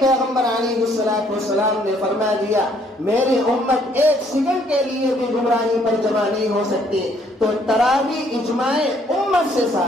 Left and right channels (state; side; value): normal; both; correlation 0.65